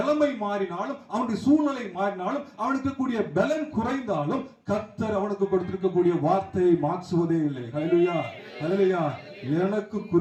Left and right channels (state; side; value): identical; both; correlation 1.00